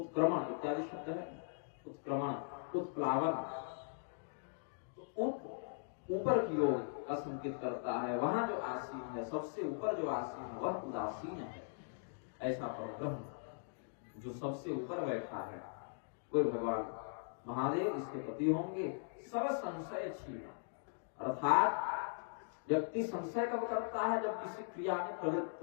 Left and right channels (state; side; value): silent; right; digital silence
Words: इत्यादि शब्द है, उत्क्रमण, उत्प्लावन। तो उत ऊपर की ओर का संकेत करता है। वहां जो आसीन है, सबसे ऊपर जो आसीन है वह उदासीन है। ऐसा परब्रह्म जो सबसे ऊपर बैठा है कोई भगवान महादेव इसके पति होंगे। सब संशय छीना, अर्थात व्यक्ति संशय कब करता है, जब किसी क्रिया में प्रवृत्त